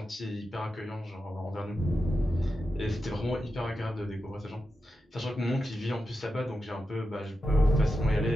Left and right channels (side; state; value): both; normal; correlation 0.89